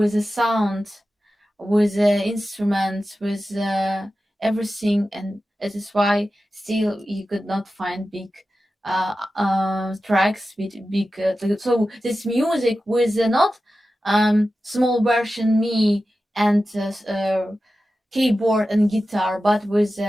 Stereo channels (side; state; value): both; normal; correlation 0.93